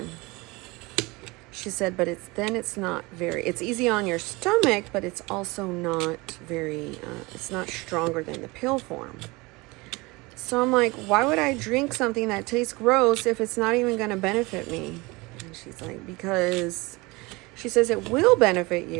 She said, but it's not very, it's easy on your stomach, but it's also not very, it's not stronger than the pill form. So I'm like, why would I drink something that tastes gross if it's not even going to benefit me? And she's like, because she says it will benefit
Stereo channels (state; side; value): quieter; left; 24.0 dB